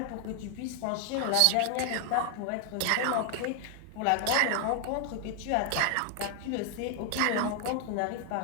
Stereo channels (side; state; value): both; different; correlation 0.00